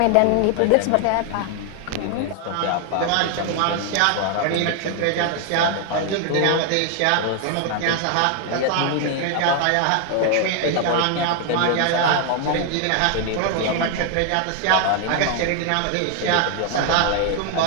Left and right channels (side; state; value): both; different; correlation 0.00